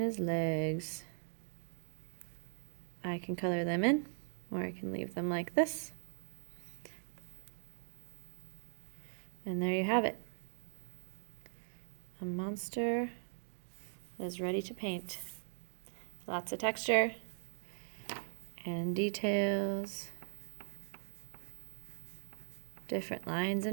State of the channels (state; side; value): silent; left; digital silence